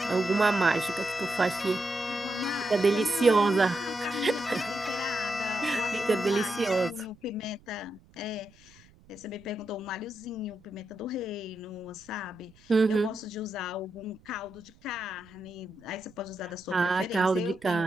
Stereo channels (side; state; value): right; noise; rumble, 27 dB below the sound